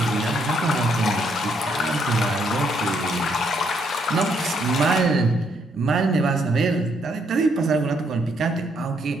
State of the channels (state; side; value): normal; both; correlation 0.72